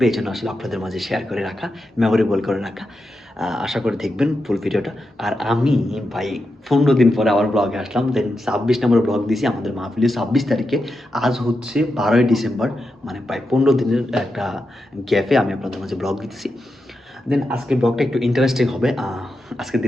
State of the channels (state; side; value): normal; both; correlation 0.88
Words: এই জন্য আসলে আপনাদের মাঝে শেয়ার করে রাখা, মেমোরেবল করে রাখা। আশা করে দেখবেন ফুল ভিডিওটা। আর আমি ভাই 15 দিন পরে আবার ব্লগে আসলাম। দেন 26 নম্বর ব্লগ দিয়েছি আমাদের মাহফিলে 26 তারিখে। আজ হচ্ছে 12ই ডিসেম্বর, মানে প্রায় 15 দিনের একটা গ্যাপে আমি আপনাদের মাঝে ব্লগ দিতেছি। দেন আজকের ব্লগটা একটু ইন্টারেস্টিং হবে। আজকের